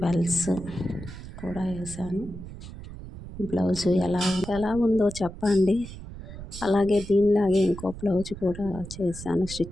బెల్స్ కూడా వేసాను. బ్లౌజు ఎలా ఉందో చెప్పండి. అలాగే దీనిలాగే ఇంకో బ్లౌజ్ కూడా చేశాను,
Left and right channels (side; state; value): right; noise; rumble, 13 dB below the sound